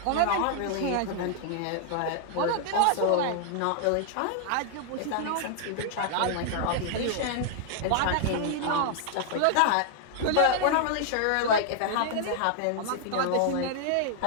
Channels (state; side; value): different; both; correlation -0.01